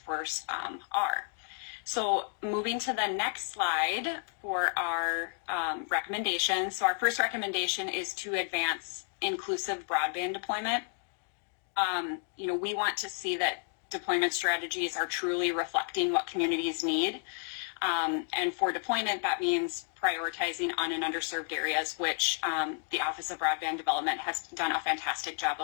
force are. So moving to the next slide for our recommendations. So our first recommendation is to advance inclusive broadband deployment. We want to see that deployment strategies are truly reflecting what communities need. And for deployment, that means prioritizing on and underserved areas, which the Office of Broadband Development has done a fantastic job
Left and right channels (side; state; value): right; silent; 57 dB below the other